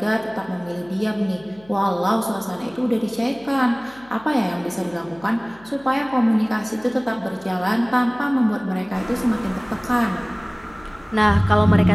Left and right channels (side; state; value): left; noise; hum, 26 dB below the sound